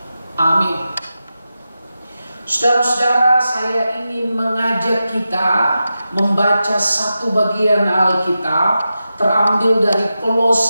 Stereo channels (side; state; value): both; inverted; correlation -0.91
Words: Amin. Saudara-saudara, saya ingin mengajak kita membaca satu bagian Alkitab terambil dari